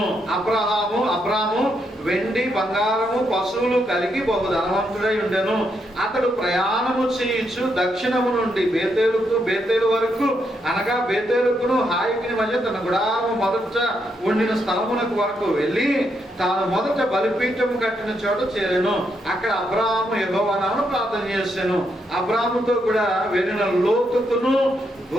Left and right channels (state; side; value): normal; both; correlation 0.79